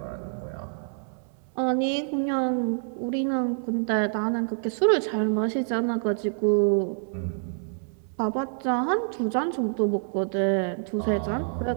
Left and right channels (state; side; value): silent; left; 60 dB below the other